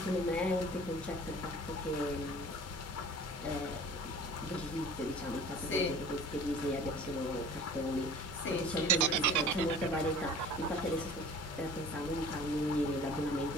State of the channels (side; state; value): both; normal; correlation 0.45